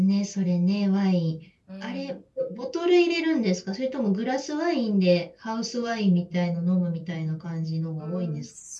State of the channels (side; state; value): both; identical; correlation 1.00